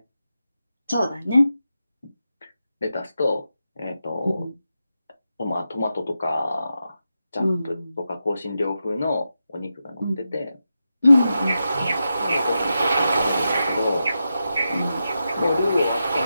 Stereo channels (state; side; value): inverted; both; correlation -0.89